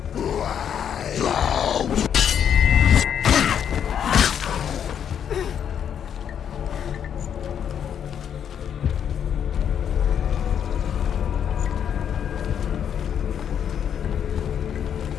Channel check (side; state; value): right; quieter; 8.6 dB